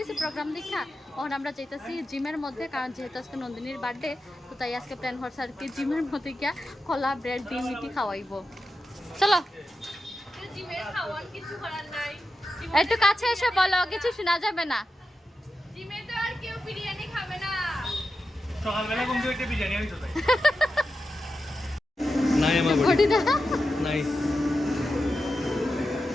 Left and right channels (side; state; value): both; normal; correlation 0.90